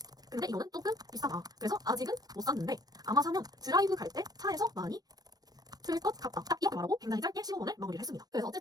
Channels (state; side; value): late; left; 0.19 ms